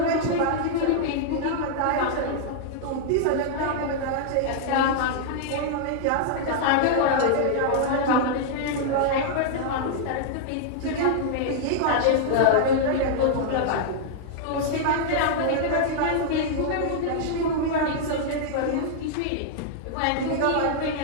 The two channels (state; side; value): different; both; correlation -0.01